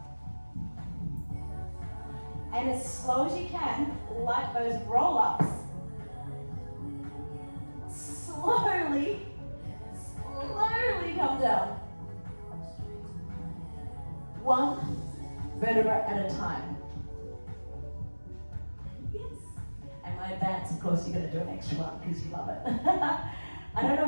And as slow as you can, like those roll-ups, slowly come down. 1 vertebra at a time. Yes. And my advance, of course, you're going to do an extra one because you love it. I don't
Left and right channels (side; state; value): both; inverted; correlation -1.00